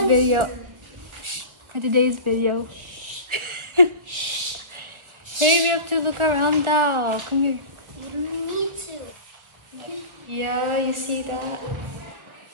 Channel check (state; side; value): late; left; 1.6 ms